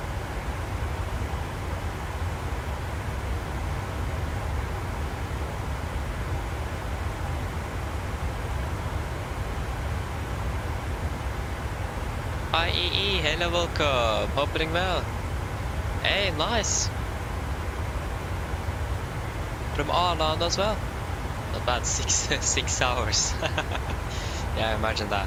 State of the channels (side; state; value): both; identical; correlation 1.00